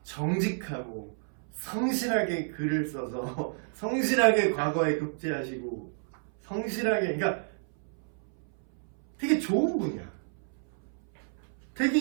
정직하고 성실하게 글을 써서 성실하게 과거에 급제하시고 성실하게 그러니까 되게 좋은 분이야. 되게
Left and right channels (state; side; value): silent; left; 58 dB below the other